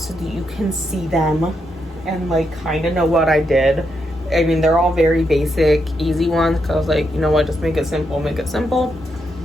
so that you can see them and like kind of know what I did. I mean, they're all very basic, easy ones because I was like, you know what, just make it simple, make it simple.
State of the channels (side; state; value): both; normal; correlation 0.81